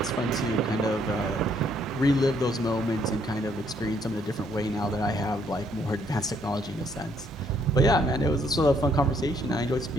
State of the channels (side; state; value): both; normal; correlation 0.69